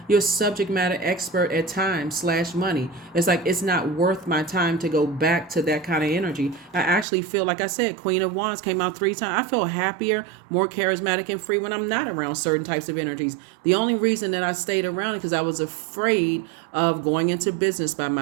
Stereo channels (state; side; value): drops out; left; at 7.1 s